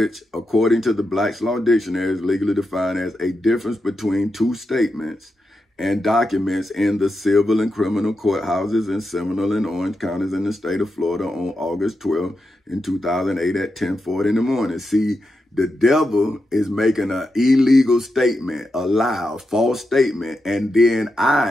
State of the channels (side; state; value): both; normal; correlation 0.87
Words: according to the Black's Law Dictionary, is legally defined as a difference between two statements and documents in the civil and criminal courthouses in Seminole and Orange counties in the state of Florida on August 12 in 2008 at 10:40 in the morning. See, the devil is making an illegal statement, a lie, a false statement, and then